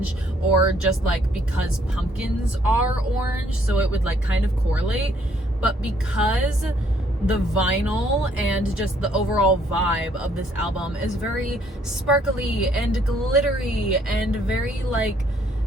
or just like because pumpkins are orange, so it would like kind of correlate. But because the vinyl and just the overall vibe of this album is very sparkly and glittery and very like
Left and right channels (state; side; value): normal; both; correlation 0.66